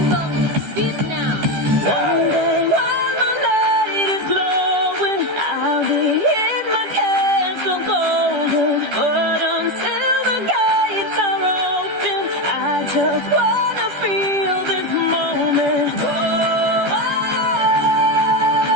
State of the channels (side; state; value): left; late; 14 ms